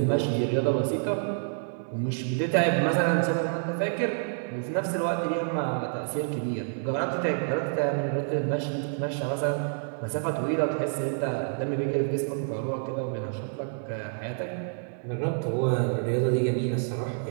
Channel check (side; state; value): left; silent; digital silence